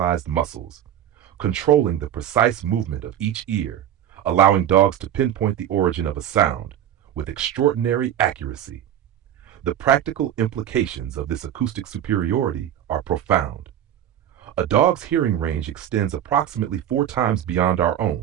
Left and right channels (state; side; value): quieter; left; 10.7 dB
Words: muscles, controlling the precise movement of each ear, allowing dogs to pinpoint the origin of a sound with extraordinary accuracy. The practical implications of this acoustic superiority are profound. A dog's hearing range extends approximately 4 times beyond our